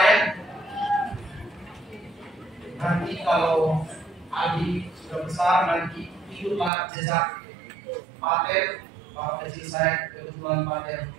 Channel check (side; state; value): left; drops out; at 6.7 s